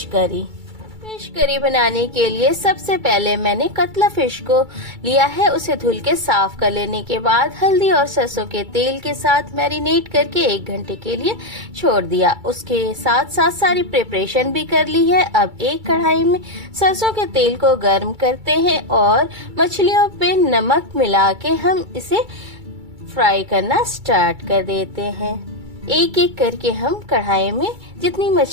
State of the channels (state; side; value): late; left; 2.3 ms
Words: करी। फिश करी बनाने के लिए सबसे पहले मैंने कतला फिश को लिया है। उसे धुल के साफ कर लेने के बाद हल्दी और सरसों के तेल के साथ मैरिनेट करके 1 घंटे के लिए छोड़ दिया। उसके साथ साथ सारी प्रिपरेशन भी कर ली है। अब एक कढ़ाई में सरसों के तेल को गर्म करते हैं और मछलियों पे नमक मिला के हम इसे फ्राई करना स्टार्ट कर देते हैं। एक एक करके हम कढ़ाई में जितनी